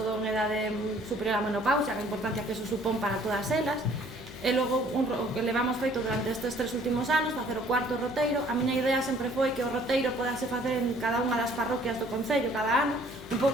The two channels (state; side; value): normal; both; correlation 0.58